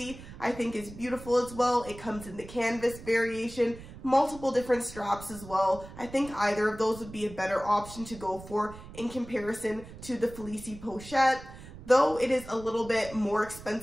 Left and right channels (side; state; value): right; noise; rumble, 15 dB below the sound